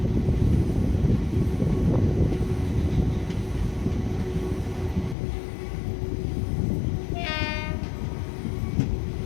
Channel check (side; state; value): right; drops out; at 5.2 s